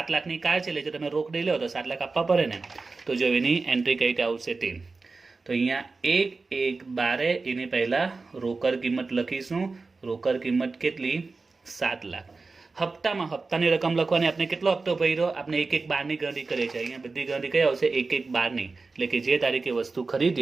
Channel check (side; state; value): left; quieter; 4.0 dB